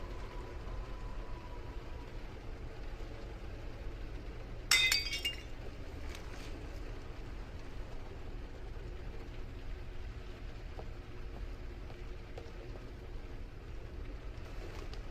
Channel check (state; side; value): identical; both; correlation 1.00